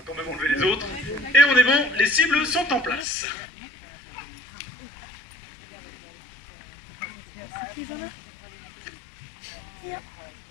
quand même enlever les autres. Et on est bon, les cibles sont en place.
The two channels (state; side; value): drops out; right; at 3.1 s